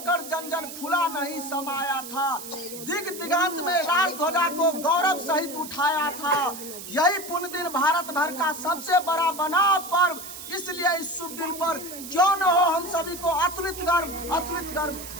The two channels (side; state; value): right; noise; hiss, 11 dB below the sound